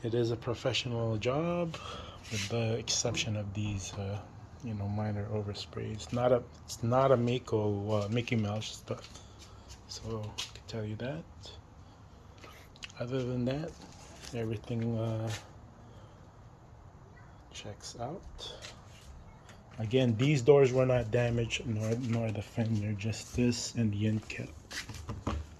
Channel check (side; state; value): both; identical; correlation 1.00